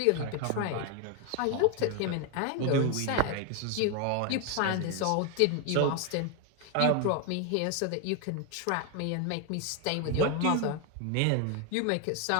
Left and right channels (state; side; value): different; both; correlation 0.01